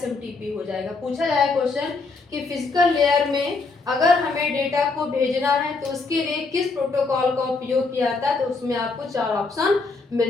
हो जाएगा। पूछा जाए क्वेश्चन कि फिजिकल लेयर में अगर हमें डेटा को भेजना है तो उसके लिए किस प्रोटोकॉल का उपयोग किया जाता है, तो उसमें आपको 4 ऑप्शन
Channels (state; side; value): quieter; right; 4.0 dB